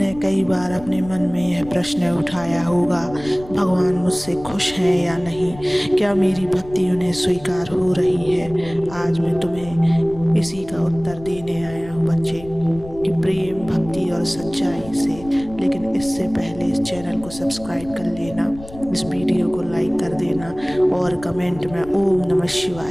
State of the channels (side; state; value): left; noise; rumble, 17 dB below the sound